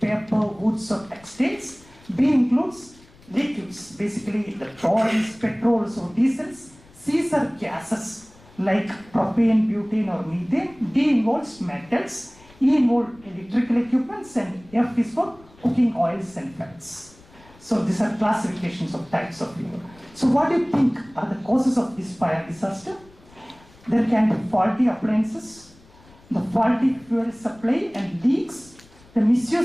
woods or textiles. B includes liquids, basically the oils, petrols or diesels. C are gases like propane, butane or methane. D involves metals. E involves electrical equipments, and F is for cooking oils and fats. So these are classifications of types of fuel. So what do you think are the causes of this fire disaster? There can be faulty appliances, the faulty fuel supply and leaks, the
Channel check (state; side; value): noise; left; rumble, 26 dB below the sound